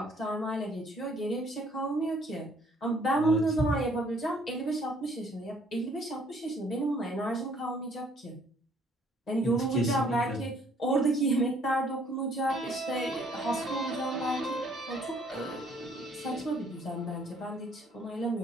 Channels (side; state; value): both; normal; correlation 0.62